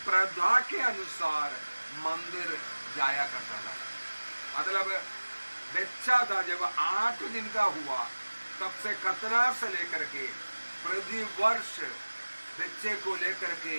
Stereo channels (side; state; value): both; inverted; correlation -1.00